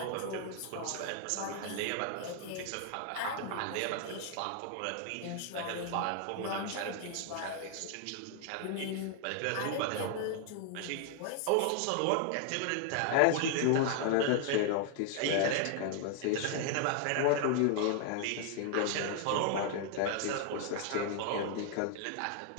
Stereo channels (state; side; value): different; both; correlation 0.00